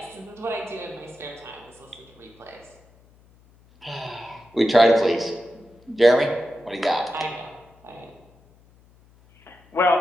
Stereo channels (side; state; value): left; noise; hum, 29 dB below the sound